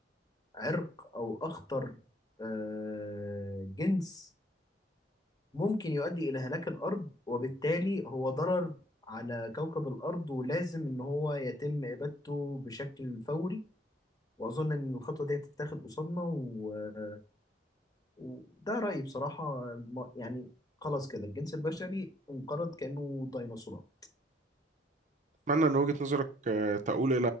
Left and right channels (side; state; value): both; normal; correlation 0.63